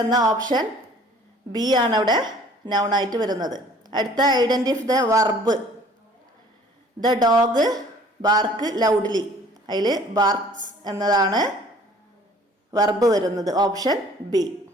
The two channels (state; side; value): normal; both; correlation 0.53